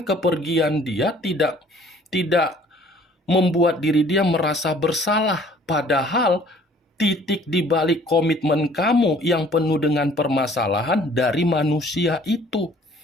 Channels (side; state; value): both; normal; correlation 0.55